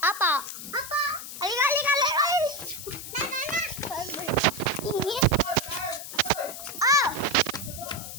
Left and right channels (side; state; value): left; noise; hiss, 10 dB below the sound